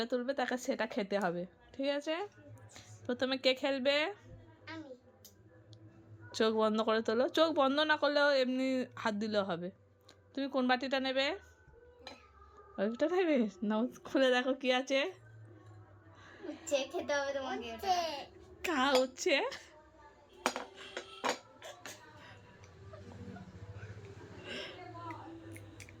তুলবে তাকে সেটা খেতে হবে, ঠিক আছে? প্রথমে কে খেলবে? চোখ বন্ধ করে তোলো। চোখ বন্ধ না করলেও এমনি হাত দিলেও হবে। তুমি কোন বাটিটা নেবে? ওইটা নেবে? নাও, খুলে দেখো কি আছে। খেতে হবে তোমাকে। কা হচ্ছে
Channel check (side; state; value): both; identical; correlation 1.00